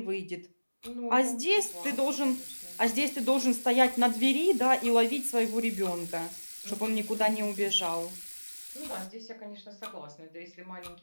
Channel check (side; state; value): both; inverted; correlation -1.00